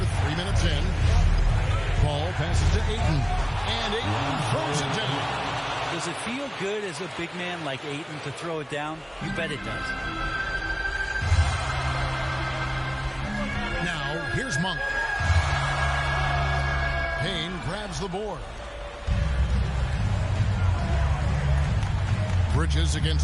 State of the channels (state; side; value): identical; both; correlation 1.00